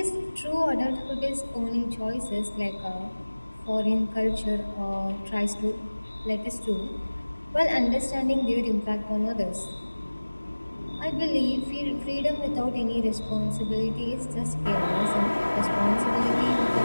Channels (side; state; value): both; inverted; correlation -1.00